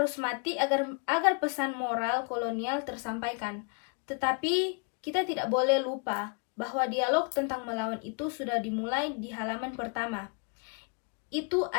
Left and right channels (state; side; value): quieter; right; 36.5 dB